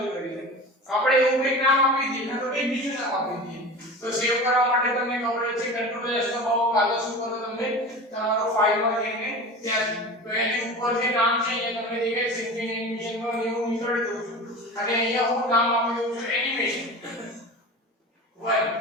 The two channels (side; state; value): both; normal; correlation 0.33